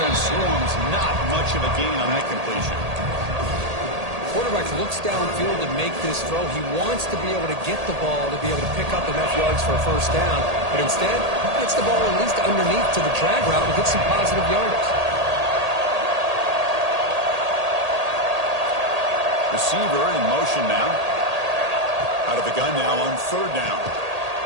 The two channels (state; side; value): late; left; 1.8 ms